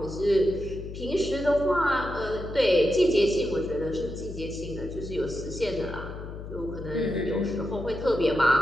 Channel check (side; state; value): left; noise; hum, 10 dB below the sound